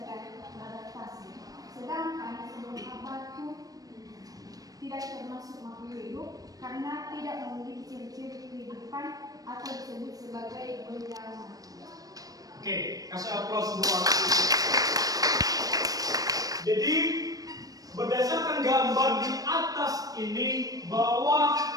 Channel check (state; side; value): late; left; 0.18 ms